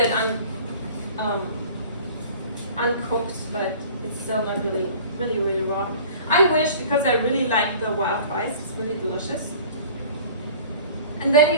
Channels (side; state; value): both; inverted; correlation -0.45